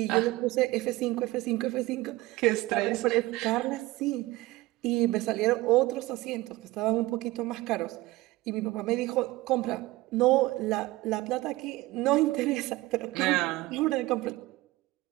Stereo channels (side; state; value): left; quieter; 19.2 dB